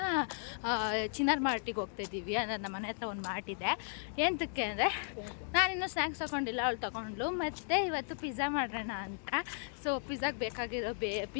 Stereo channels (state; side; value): silent; right; digital silence